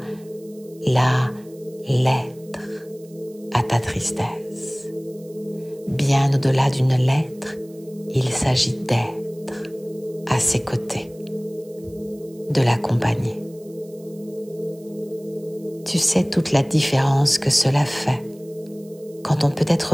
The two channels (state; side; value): noise; right; hiss, 27 dB below the sound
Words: la lettre à ta tristesse. Bien au-delà d'une lettre, il s'agit d'être à ses côtés, de l'accompagner. Tu sais toute la différence que cela fait quand on peut